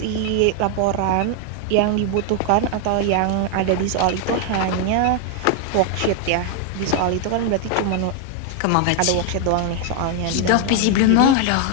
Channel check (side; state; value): both; different; correlation 0.00